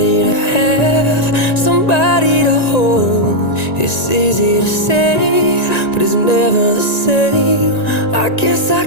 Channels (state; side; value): late; right; 1.9 ms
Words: to have, somebody to hold. It's easy to say, but it's never the same. I guess I